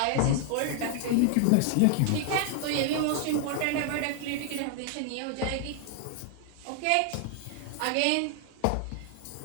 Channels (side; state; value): both; different; correlation 0.00